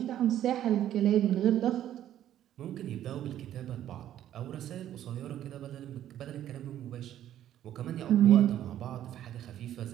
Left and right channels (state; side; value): quieter; left; 11.7 dB